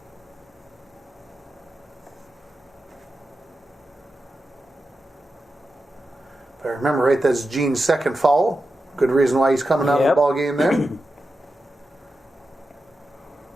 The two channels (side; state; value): both; normal; correlation 0.90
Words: If I remember right, that's Gene's second foul. Good reason why he's coming out of the ball game there. Do